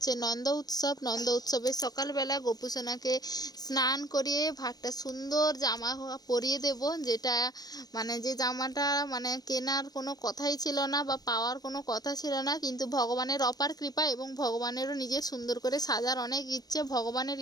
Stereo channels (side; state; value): right; late; 0.19 ms